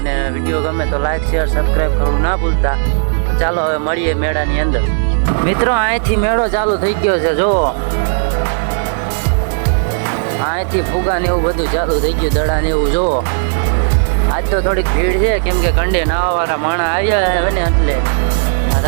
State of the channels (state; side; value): silent; left; digital silence